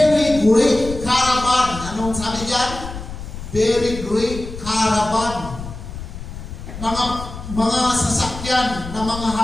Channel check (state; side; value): noise; left; rumble, 10 dB below the sound